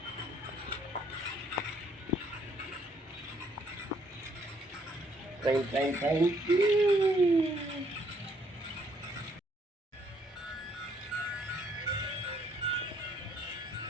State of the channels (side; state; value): both; normal; correlation 0.67